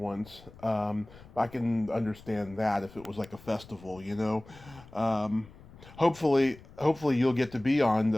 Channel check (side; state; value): left; noise; rumble, 21 dB below the sound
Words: once. I can understand that if it was like a festival, you know. Hopefully you'll get to be on